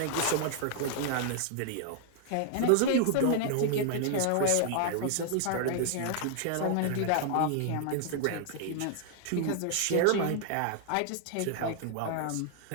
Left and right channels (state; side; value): different; both; correlation 0.00